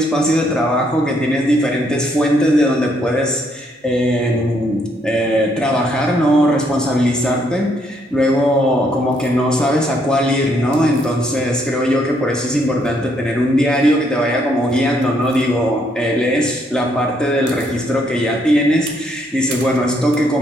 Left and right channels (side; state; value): both; normal; correlation 0.71